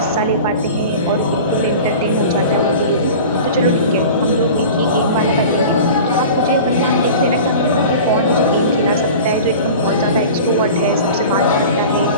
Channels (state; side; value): inverted; both; correlation -0.37